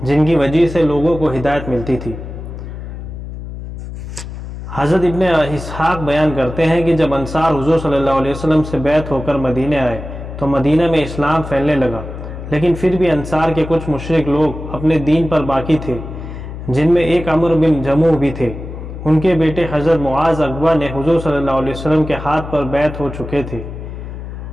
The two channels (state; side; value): noise; left; hum, 10 dB below the sound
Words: جن کی وجہ سے لوگوں کو ہدایت ملتی تھی۔ حضرت ابن اسحاق بیان کرتے ہیں کہ جب انصار حضور صلی اللہ علیہ وسلم سے بیعت ہو کر مدینہ آئے تو مدینہ میں اسلام پھیلنے لگا، لیکن پھر بھی انصار کے کچھ مشرک لوگ اپنے دین پر باقی تھے، جن میں ایک عمرو بن جموح بھی تھے۔ ان کے بیٹے حضرت معاذ اقبا نے حضور صلی اللہ علیہ وسلم کے ہاتھ پر بیعت ہو چکے تھے۔